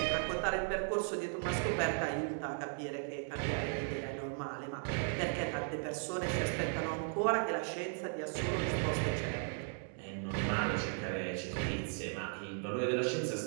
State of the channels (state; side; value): silent; left; 53 dB below the other